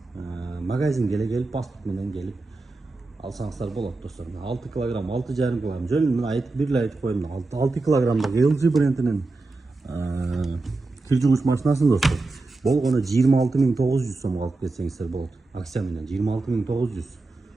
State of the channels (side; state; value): left; quieter; 3.4 dB